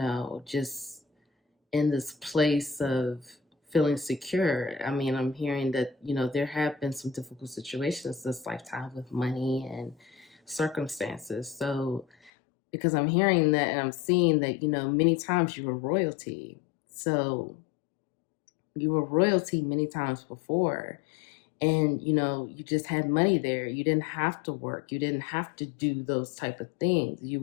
just in this place of feeling secure. I mean, I'm hearing that, there have been some difficult situations this lifetime with money and circumstances. So, because I'm hearing that and I'm seeing that, many times you were royalty. So you were royalty many times before. And, you just had money there. You didn't have to work. You didn't have to do those type of things. You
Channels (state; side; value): drops out; right; at 12.3 s